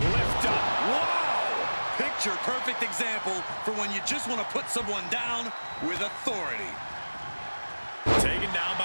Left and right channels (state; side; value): inverted; both; correlation -1.00